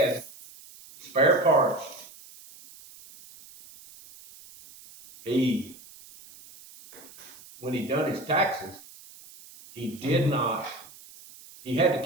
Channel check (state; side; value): noise; right; hiss, 20 dB below the sound